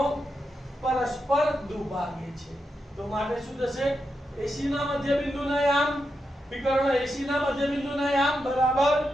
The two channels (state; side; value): normal; both; correlation 0.86